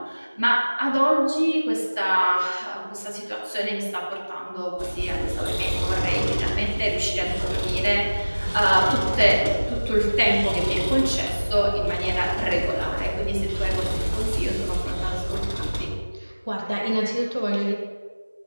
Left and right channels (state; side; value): inverted; both; correlation -1.00